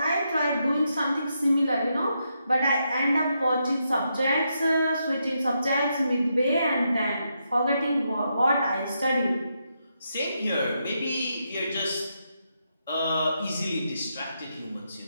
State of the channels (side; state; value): both; inverted; correlation -0.82